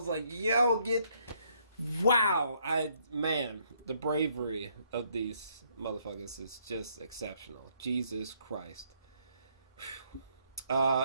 like, yo, wow. The bravery of these motherfuckers is just exceptional. Jesus Christ.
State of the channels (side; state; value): both; inverted; correlation -0.70